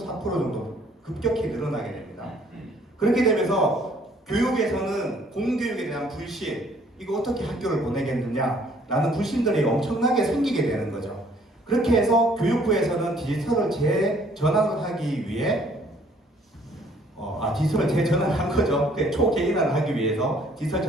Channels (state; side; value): normal; both; correlation 0.61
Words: 정도 급격히 늘어나게 됩니다. 그렇게 되면서 교육에서는 공교육에 대한 불신, 이거 어떻게 학교를 보내겠느냐라는 불신들이 엄청나게 생기게 되는 거죠. 그렇게 해서 교육부에서는 디지털을 재전환을 하기 위해 디지털을 대전환한 거죠. 초개인화를 하기 위해서 디지털